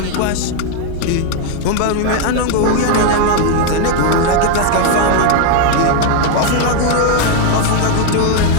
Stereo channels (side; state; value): both; different; correlation 0.01